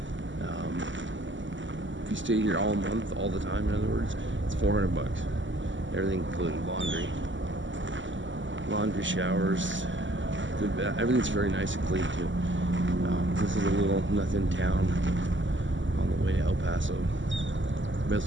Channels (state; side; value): late; left; 0.55 ms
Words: If you stay here all month, all the time, in other words, it's $400. Everything included: laundry, showers, good bath. Everything's very nice and clean too. This is a little nothing town on the way to El Paso,